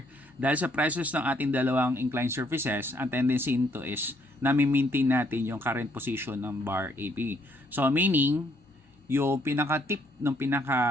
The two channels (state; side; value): normal; both; correlation 0.69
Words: dahil sa presence ng ating dalawang inclined surfaces, ang tendency nito is nami-maintain natin yung current position ng bar AB. So, meaning, yung pinaka-tip ng